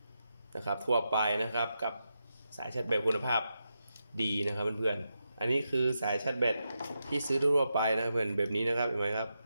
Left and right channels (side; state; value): both; inverted; correlation -0.87